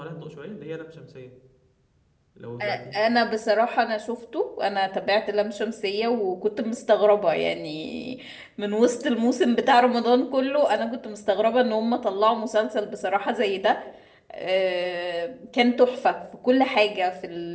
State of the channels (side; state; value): both; identical; correlation 1.00